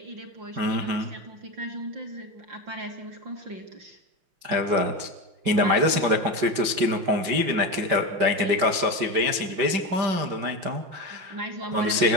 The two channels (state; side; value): late; left; 5.2 ms